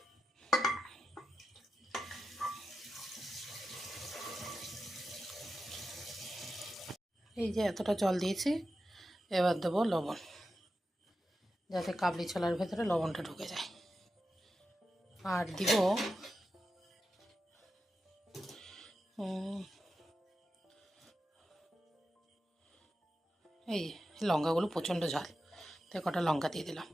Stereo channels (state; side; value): normal; both; correlation 0.90